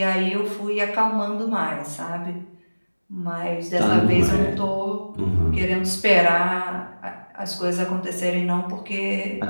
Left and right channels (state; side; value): inverted; both; correlation -1.00